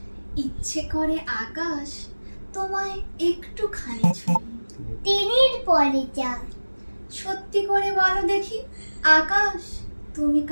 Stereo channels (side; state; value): both; inverted; correlation -1.00